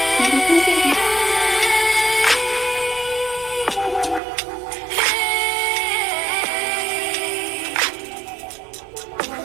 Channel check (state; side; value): drops out; left; at 4.2 s